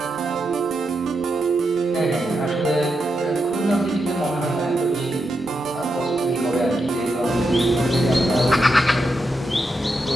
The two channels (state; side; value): normal; both; correlation 0.85